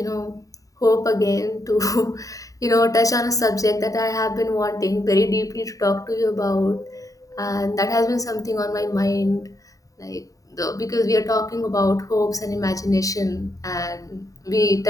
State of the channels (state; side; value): late; right; 0.16 ms